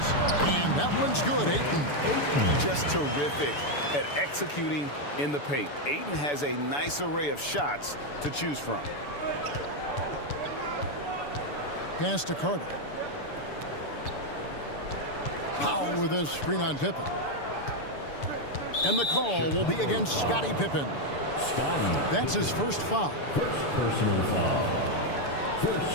And that one's good, Ayton. Just terrific at executing in the paint. Ayton has a nice array of shots to choose from. Pass to Carter. Powell with his screen on Pippen. And the call will be against Scottie Pippen. That's his first foul. First personal foul.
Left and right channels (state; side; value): late; right; 6.9 ms